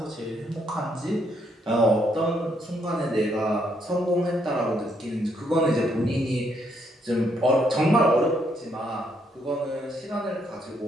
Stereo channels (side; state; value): both; normal; correlation 0.73